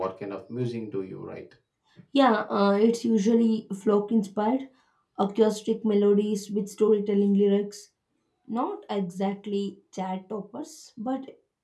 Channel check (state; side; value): identical; both; correlation 1.00